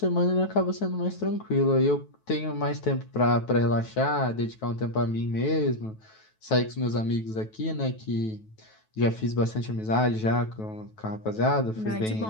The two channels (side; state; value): right; late; 9.2 ms